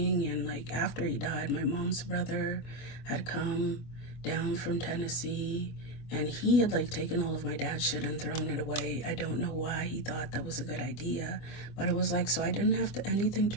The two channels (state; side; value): late; right; 25 ms